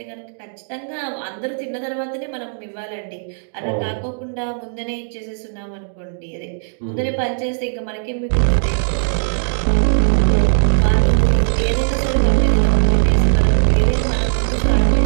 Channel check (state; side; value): silent; left; digital silence